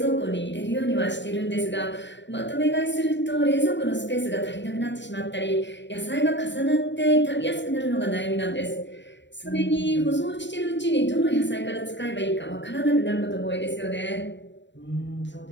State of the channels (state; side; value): late; right; 0.52 ms